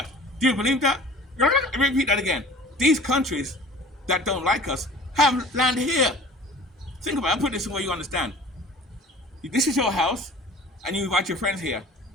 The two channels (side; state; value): both; normal; correlation 0.45